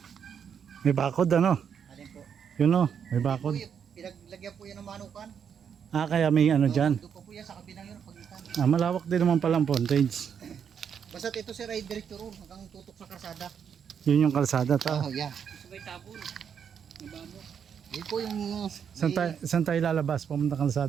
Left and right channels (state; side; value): quieter; left; 7.6 dB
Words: May bakod ano. Alin po? Yun o, may bakod. Pinaglagyan po yan ng manukan. Ah, kaya may ano dyan. Doon pa po yan sa kabilang yun, pag itanan. Ah, malawak din naman palang frontage. Basta ito sir ay direkto ron hanggang tutok sa karsada. Yun yung kalsada ta. Oh, yan. Sabay tabon. Nabamo. Yun po yung... Saan tayo lalabas? Pumunta